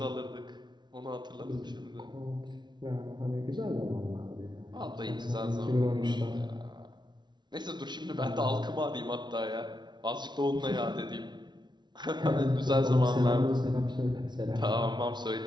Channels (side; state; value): left; late; 0.21 ms